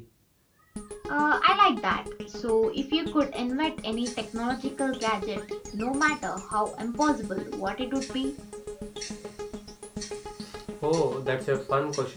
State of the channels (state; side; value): identical; both; correlation 1.00